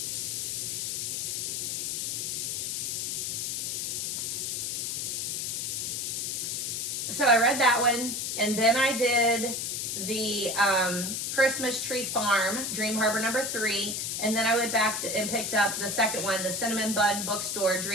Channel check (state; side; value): noise; left; hiss, 1 dB below the sound